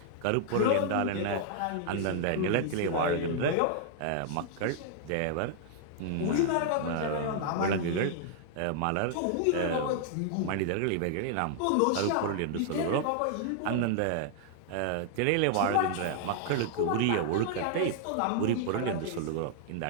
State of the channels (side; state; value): both; different; correlation -0.01